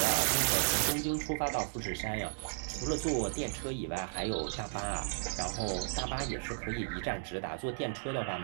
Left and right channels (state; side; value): silent; left; 55 dB below the other